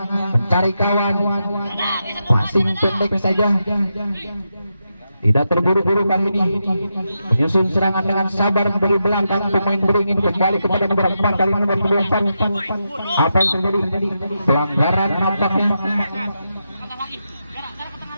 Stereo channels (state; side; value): inverted; both; correlation -0.86